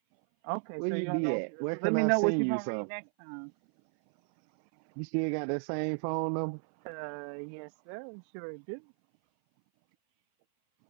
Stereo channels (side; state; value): left; silent; 56 dB below the other